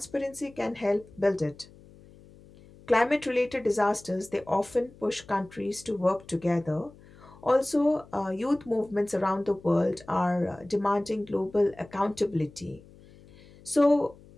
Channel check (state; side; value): noise; left; hum, 23 dB below the sound